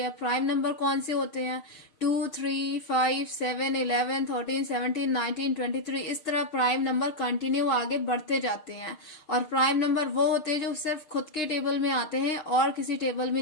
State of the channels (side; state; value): right; late; 6.5 ms